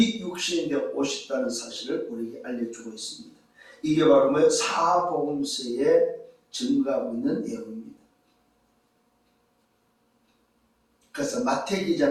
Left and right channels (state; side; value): identical; both; correlation 1.00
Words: 육신이 되어 오셨다는 사실을 우리에게 알려주고 있습니다. 이게 바로 뭐예요? 사복음서에 증거하고 있는 내용입니다. 그래서 마태